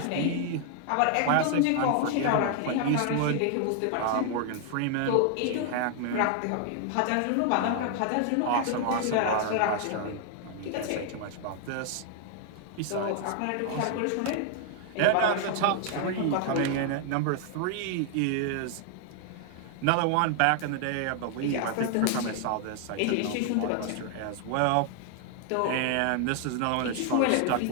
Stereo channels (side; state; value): both; different; correlation 0.00